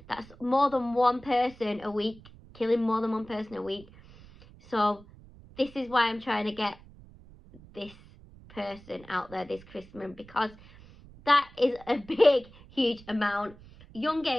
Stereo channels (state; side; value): noise; right; rumble, 22 dB below the sound